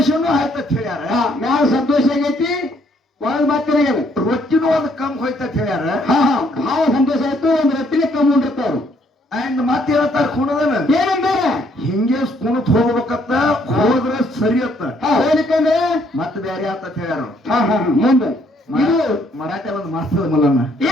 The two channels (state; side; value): normal; both; correlation 0.67